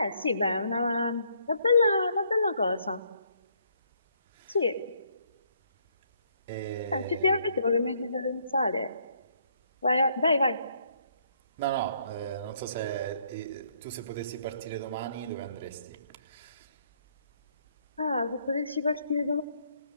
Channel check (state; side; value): inverted; both; correlation -0.68